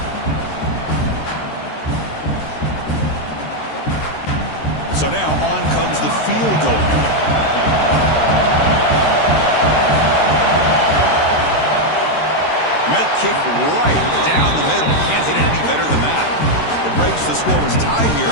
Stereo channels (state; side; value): late; right; 13 ms